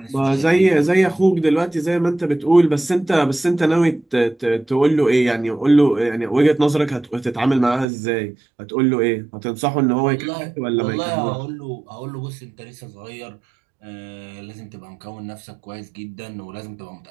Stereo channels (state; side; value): drops out; left; at 7.9 s